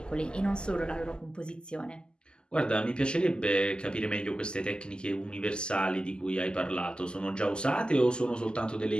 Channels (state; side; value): late; right; 0.048 ms